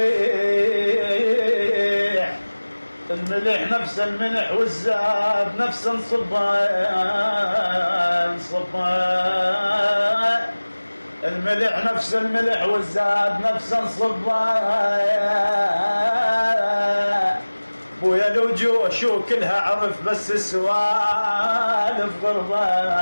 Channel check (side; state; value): both; inverted; correlation -1.00